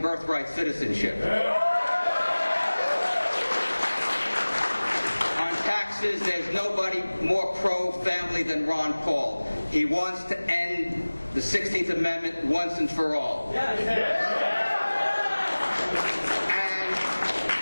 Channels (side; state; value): both; inverted; correlation -1.00